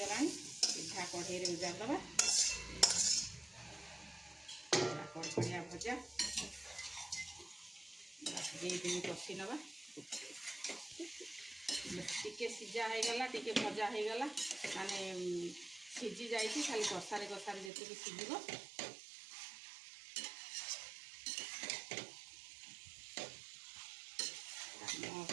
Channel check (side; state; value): left; drops out; at 17.7 s